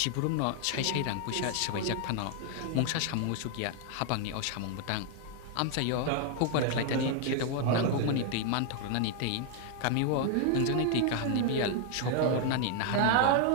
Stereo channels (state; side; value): different; both; correlation 0.00